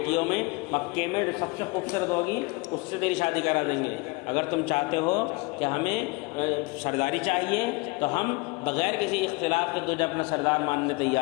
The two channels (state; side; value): quieter; right; 25.5 dB